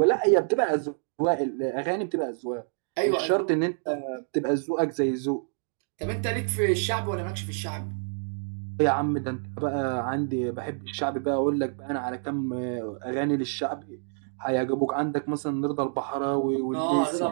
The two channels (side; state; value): left; silent; digital silence